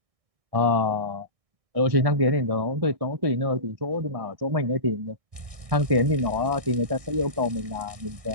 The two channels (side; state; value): left; late; 1.6 ms